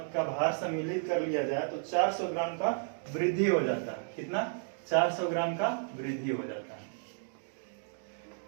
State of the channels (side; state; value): left; silent; 56 dB below the other